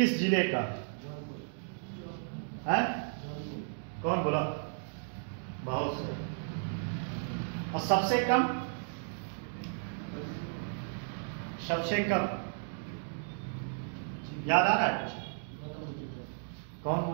जिले का है? कौन बोला? बहुत सही। और सबसे कम याद आ रहा है? कौन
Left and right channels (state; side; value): silent; left; digital silence